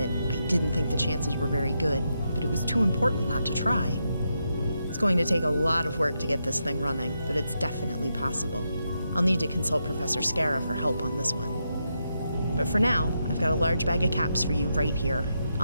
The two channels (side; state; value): both; inverted; correlation -0.83